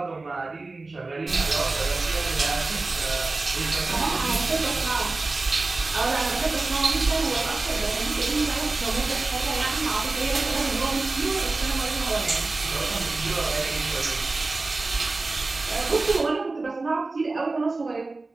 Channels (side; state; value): left; quieter; 3.5 dB